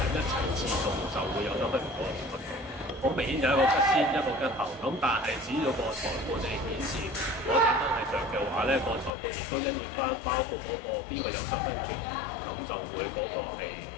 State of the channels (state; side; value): drops out; right; at 9.1 s